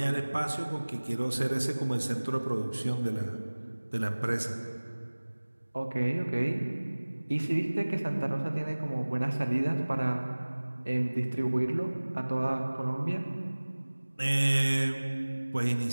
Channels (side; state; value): both; inverted; correlation -1.00